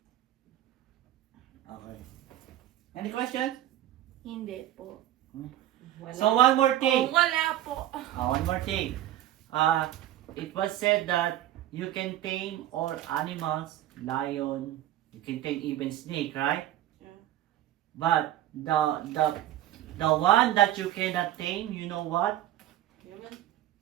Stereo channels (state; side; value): quieter; left; 13.1 dB